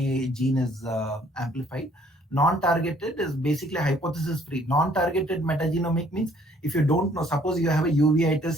gene is amplified. Non-targeted is basically hypothesis free. Non-targeted metagenomic means if you don't know, suppose you have a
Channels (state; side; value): normal; both; correlation 0.61